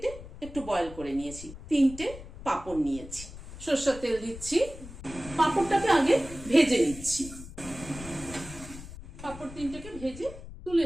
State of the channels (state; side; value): noise; left; rumble, 14 dB below the sound